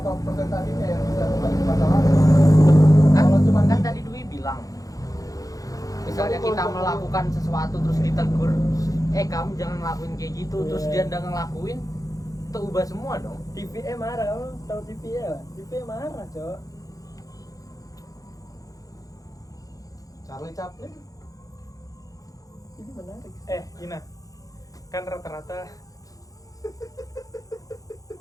persentasenya yang bisa kembali ke masa lalu. Kan, Kalau cuma kan tadi Dwi bilang, misalnya kita melakukan sesuatu terus ditegur, kamu jangan ngelakuin kayak gitu, terus Iya. dia nggak ngelakuin, itu ubah semua dong. TVE marah, kamu tahu TVE lah? TVE marah cok. Charlie Chaplin Ini menarik. Gina kan rata-rata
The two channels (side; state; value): right; late; 0.17 ms